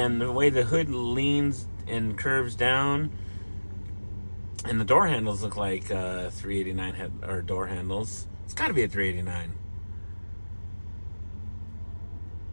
the way the hood leans and curves down, and the door handles look like 389 door handles. It's got to be a 389.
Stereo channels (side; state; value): both; inverted; correlation -1.00